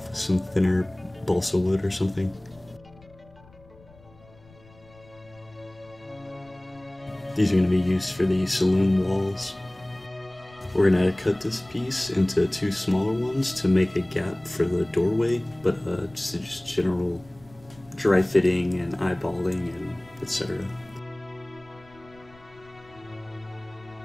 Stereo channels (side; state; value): left; noise; rumble, 25 dB below the sound